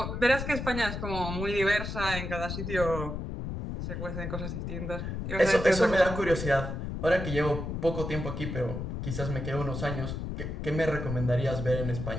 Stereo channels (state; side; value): noise; left; rumble, 5 dB below the sound